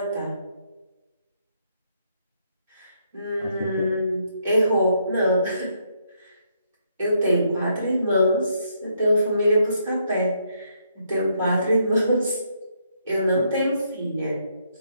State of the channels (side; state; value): both; inverted; correlation -0.74